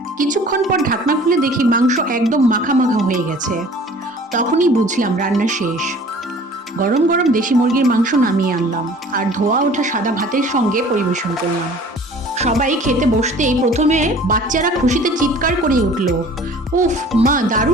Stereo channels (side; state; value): both; normal; correlation 0.48